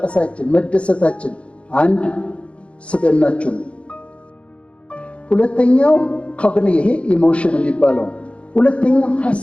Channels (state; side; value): late; right; 0.060 ms